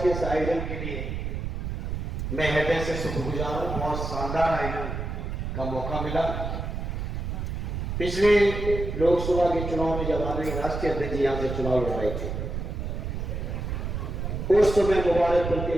के इस आयोजन के लिए मैं हृदय से शुक्रगुजार हूं। बहुत शानदार आयोजन का मौका मिला। पिछले लोकसभा के चुनाव में जब हमारे राष्ट्रीय अध्यक्ष जी यहां से चुनाव लड़ थे, उस समय मुबारकपुर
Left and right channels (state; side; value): noise; right; rumble, 4 dB below the sound